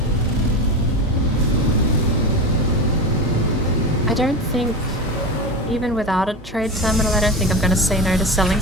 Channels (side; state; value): both; normal; correlation 0.23